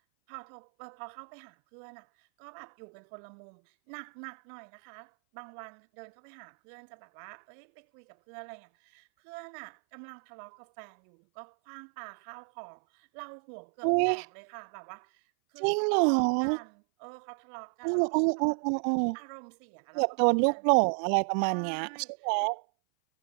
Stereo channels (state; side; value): silent; left; 57 dB below the other